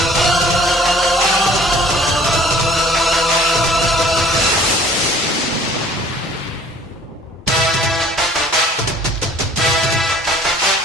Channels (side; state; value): both; normal; correlation 0.52